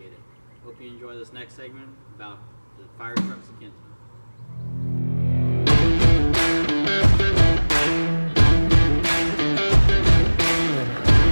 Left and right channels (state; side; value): inverted; both; correlation -1.00